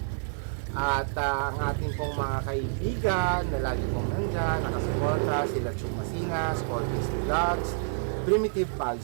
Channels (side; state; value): left; silent; 59 dB below the other